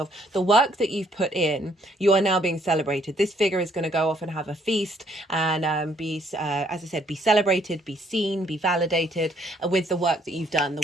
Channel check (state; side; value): normal; both; correlation 0.66